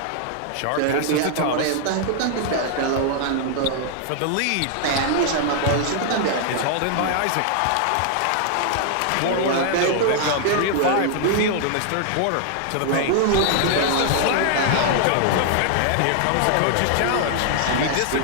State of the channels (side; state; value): both; different; correlation 0.00